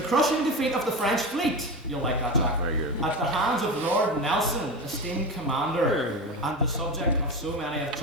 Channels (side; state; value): both; normal; correlation 0.23